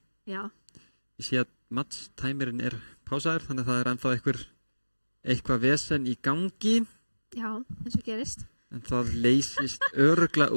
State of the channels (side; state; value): both; inverted; correlation -1.00